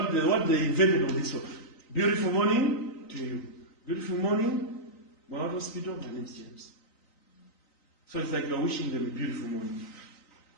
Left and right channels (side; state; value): right; late; 3.9 ms